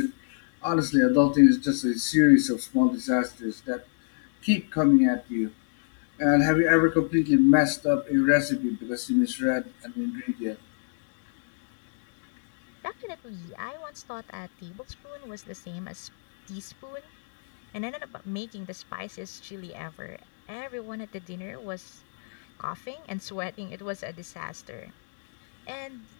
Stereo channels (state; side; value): silent; right; digital silence